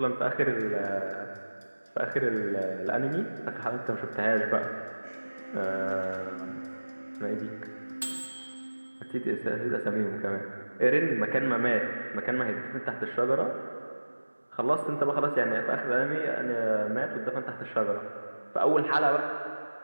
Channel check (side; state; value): both; inverted; correlation -1.00